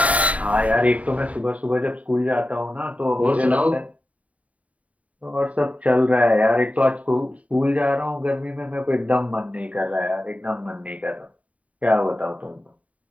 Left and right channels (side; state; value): left; late; 0.068 ms